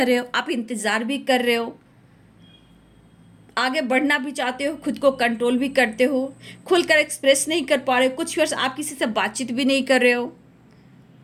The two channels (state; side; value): identical; both; correlation 1.00